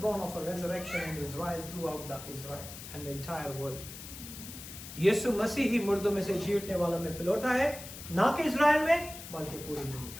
of a resurrection in Israel throughout the Israel and the entire world. यीशु मसीह ही मुर्दों में से जी उठने वालों में पिलौटा है, ना कि इज़राइल में बल्कि पूरी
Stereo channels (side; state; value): left; noise; hiss, 12 dB below the sound